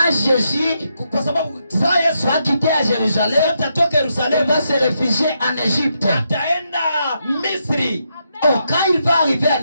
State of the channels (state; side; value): inverted; both; correlation -0.81